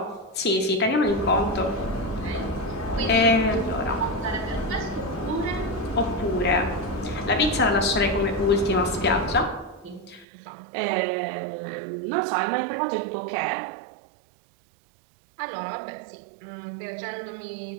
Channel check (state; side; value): drops out; left; at 10.2 s